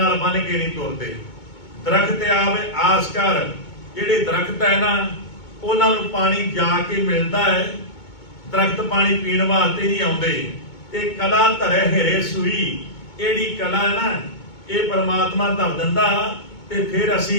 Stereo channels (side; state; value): right; late; 2.2 ms